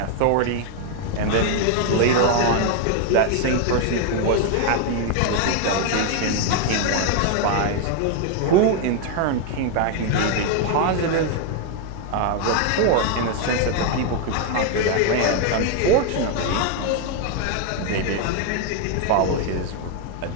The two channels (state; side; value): different; both; correlation 0.01